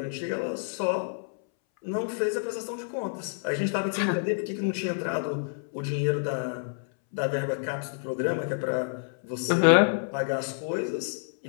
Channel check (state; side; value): silent; right; 59 dB below the other